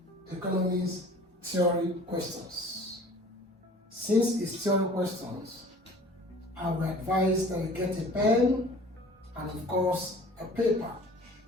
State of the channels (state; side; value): normal; both; correlation 0.47